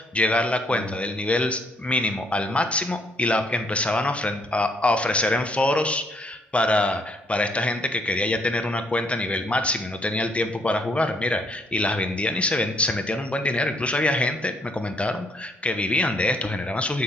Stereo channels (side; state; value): both; normal; correlation 0.69